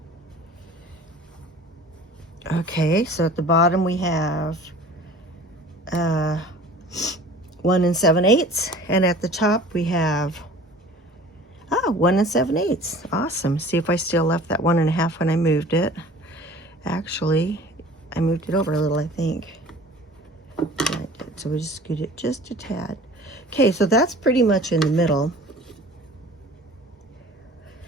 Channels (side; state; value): both; normal; correlation 0.45